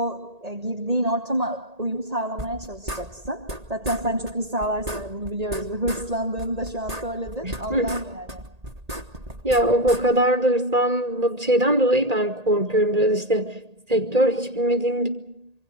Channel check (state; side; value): late; left; 1.8 ms